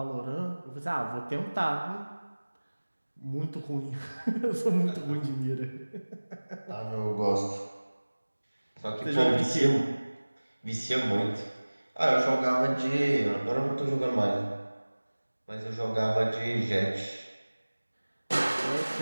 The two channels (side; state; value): both; inverted; correlation -1.00